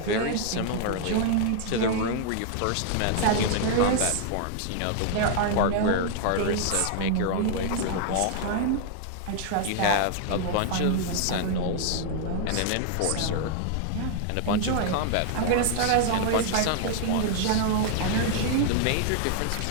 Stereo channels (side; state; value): both; different; correlation 0.00